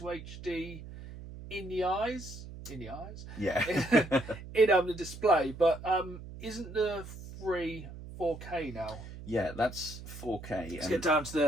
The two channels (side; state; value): right; noise; hum, 13 dB below the sound